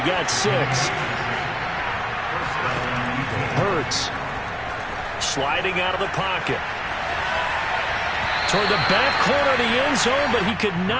got 6. Hurts sliding out of the pocket. Toward the back corner of the end zone, but he could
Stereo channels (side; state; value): both; identical; correlation 1.00